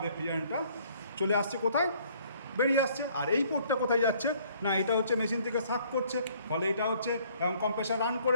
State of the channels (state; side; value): inverted; both; correlation -0.60